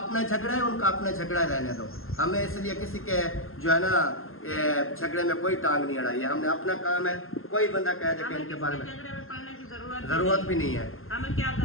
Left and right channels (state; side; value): late; right; 0.61 ms